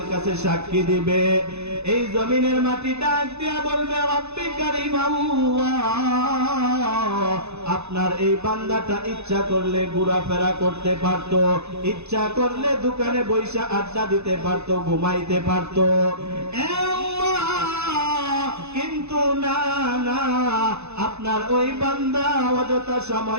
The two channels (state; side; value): late; left; 0.81 ms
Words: কাছে সাক্ষী দিবে। এই জমিনের মাটিটা দিয়া বলবে, রব্বি কারীম আল্লাহ, আপনার এই বান্দাটা ইচ্ছা করলে ঘোরাফেরা করতে পারতো, ইচ্ছা করলে দোকানে বৈশা আড্ডা দিতে পারতো, ঘুমাইতে পারতো, কিন্তু না না, আপনার ওই বান্দা অযথা